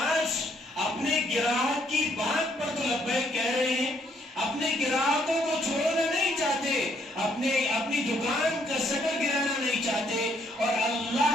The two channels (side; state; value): both; normal; correlation 0.70